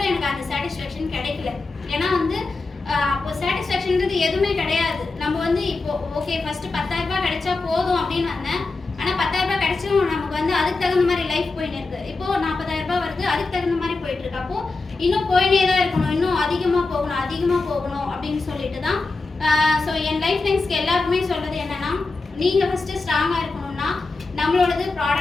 எனக்கு அந்த சாட்டிஸ்ஃபேக்ஷன் கிடைக்கல. ஏன்னா வந்து அப்போ சாட்டிஸ்ஃபேக்ஷன்றது எதுவுமே கிடையாது. நம்ம வந்து இப்போ ஓகே ஃபஸ்ட்டு 10,000 ரூபாய் கிடைச்சா போதும் அப்படின்னு வந்தேன். ஆனால் 10,000 ரூபாய் கிடைச்சும் நமக்கு வந்து அதுக்கு தகுந்த மாதிரி லைஃப் போயின்னு இருக்குது. இப்போது 40,000 ரூபாய் வருது, அதுக்கு தகுந்த மாதிரி போயிட்டு இருக்கு. அப்போது இன்னும் போயினே தான் இருக்கணும், இன்னும் அதிகமாக போகணும் அப்படின்னு சொல்லிட்டு தான். ஸோ என் லைஃப் லைன்ஸ்க்கு எல்லாருக்குமே சொல்கிறது என்னென்னா, நீங்கள் ஃபஸ்ட்டு ஸ்ட்ராங்காக இருக்கணும்னா நம்மளோடது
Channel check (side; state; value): right; quieter; 3.7 dB